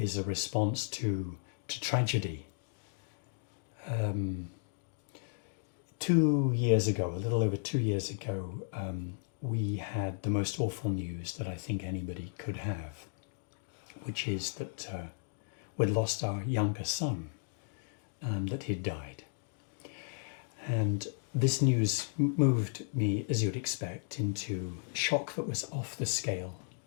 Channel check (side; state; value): right; silent; digital silence